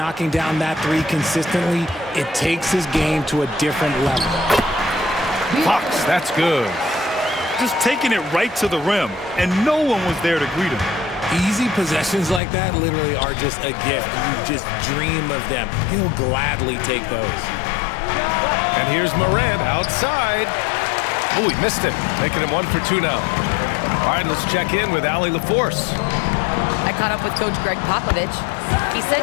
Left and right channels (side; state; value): right; drops out; at 12.4 s